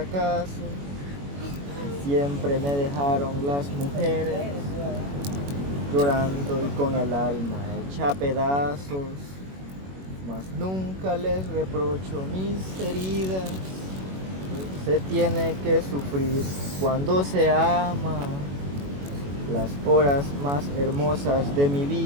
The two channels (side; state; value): left; late; 21 ms